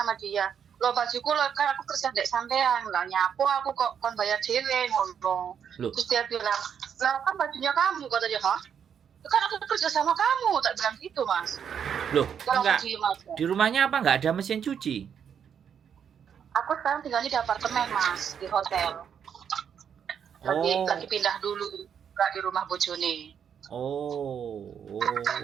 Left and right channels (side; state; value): left; quieter; 7.9 dB